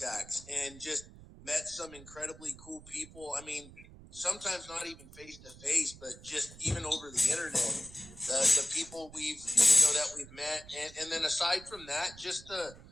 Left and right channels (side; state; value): right; noise; rumble, 19 dB below the sound